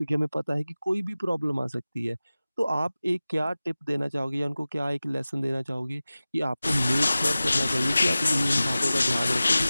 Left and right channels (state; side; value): inverted; both; correlation -0.97